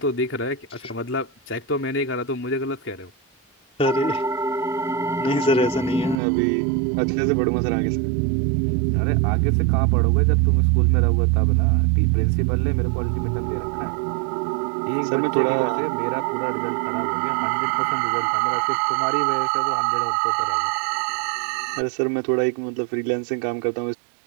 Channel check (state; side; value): drops out; left; at 6.2 s